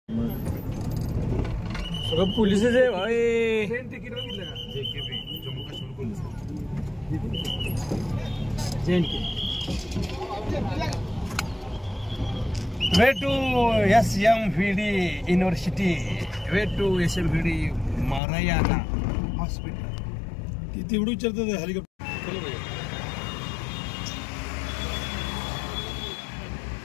सगळं पोलिसच आहे भाई। ट्रेन तिकीट बघितलं का? JKB Jammu Kashmir police, way to SMVD university, way to SMVD Narayana hospital. ती तेवढं विचारतात हेलिकॉप्टर।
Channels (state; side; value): drops out; right; at 18.2 s